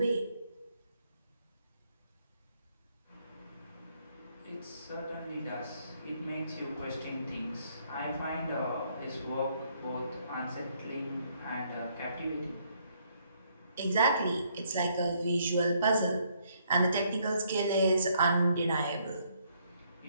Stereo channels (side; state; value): both; inverted; correlation -0.69